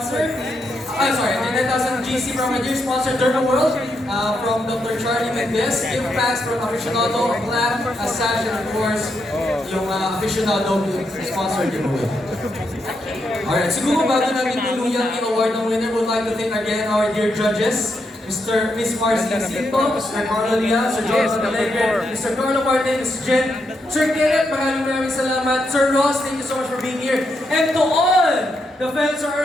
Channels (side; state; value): both; normal; correlation 0.81